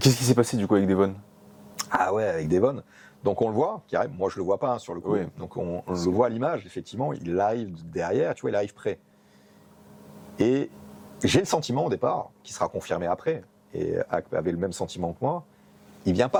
qu'est-ce qui s'est passé du coup avec Devon? Ah ouais, avec Devon. Donc on le voit, qui arrive. Moi, je le vois pas sur le coup. Oui. Donc on le voit à l'image. Effectivement, il arrive derrière. Tu vois, il arrive près. Et j'ai le sentiment au départ, qui sera confirmé après, et avait le même sentiment que moi, il vient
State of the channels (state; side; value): identical; both; correlation 1.00